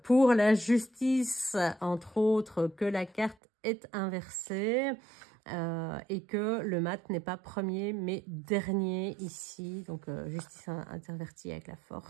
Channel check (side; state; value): left; drops out; at 3.4 s